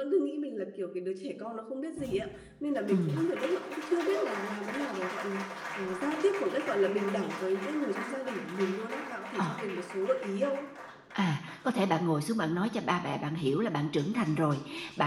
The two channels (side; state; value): both; identical; correlation 1.00